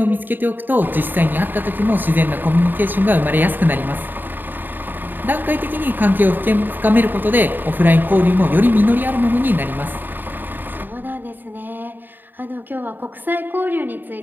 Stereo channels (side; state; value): left; late; 0.092 ms